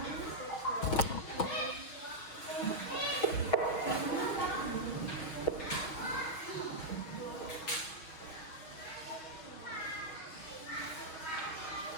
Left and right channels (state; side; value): late; right; 6.2 ms